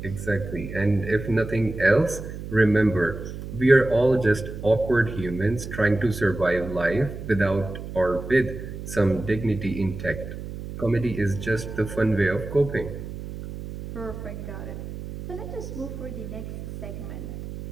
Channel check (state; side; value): noise; right; hum, 9 dB below the sound